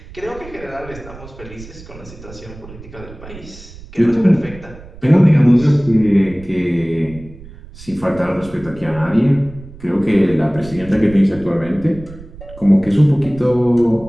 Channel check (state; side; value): noise; right; rumble, 17 dB below the sound